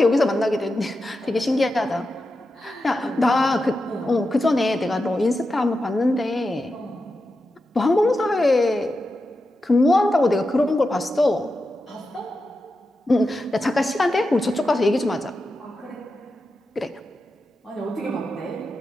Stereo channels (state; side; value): normal; both; correlation 0.90